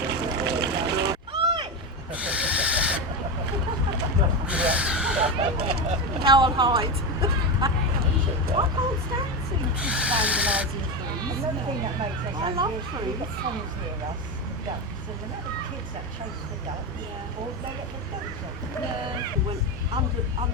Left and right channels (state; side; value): normal; both; correlation 0.16